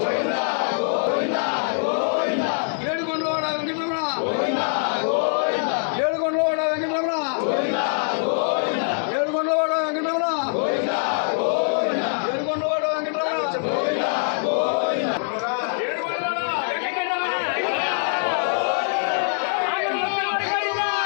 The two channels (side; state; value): right; silent; digital silence